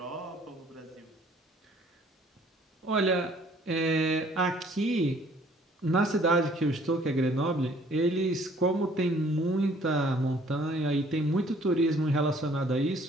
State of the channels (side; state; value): both; normal; correlation 0.58